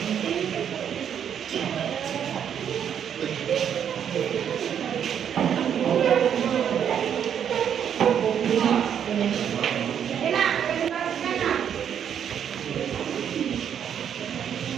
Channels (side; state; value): left; quieter; 8.7 dB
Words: Enak, presentasikan nak.